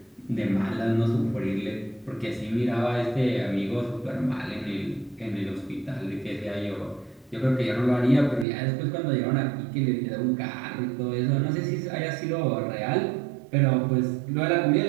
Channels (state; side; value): drops out; left; at 8.5 s